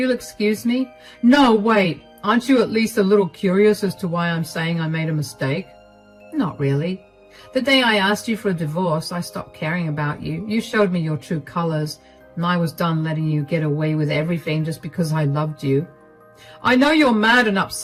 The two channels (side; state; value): both; identical; correlation 1.00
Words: excuse me. No, wait. Aren't you at least a little curious as to why I'm saying I made a mistake? Not really. The day I asked you for a divorce, I stopped caring about you. You showed me your true colors, and I was done letting you get away with everything just because I loved you. I know you're mad and